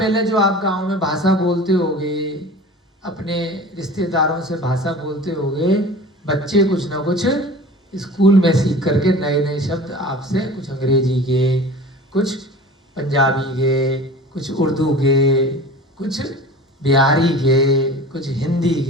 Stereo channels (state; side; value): normal; both; correlation 0.39